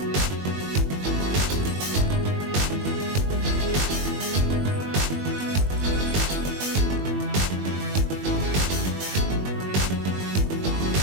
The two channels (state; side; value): late; left; 21 ms